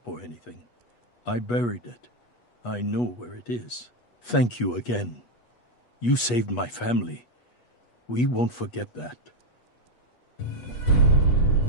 or anything. I buried it. I know where it is. Thank you again. You saved my family. We won't forget that.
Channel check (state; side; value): late; right; 8.2 ms